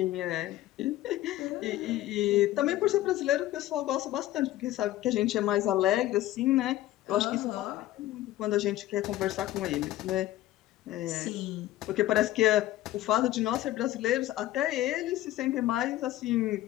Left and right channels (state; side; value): quieter; right; 14.9 dB